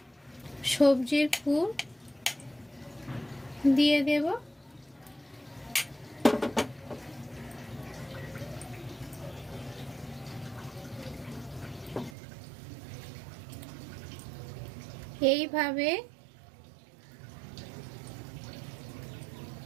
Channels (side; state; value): left; drops out; at 12.2 s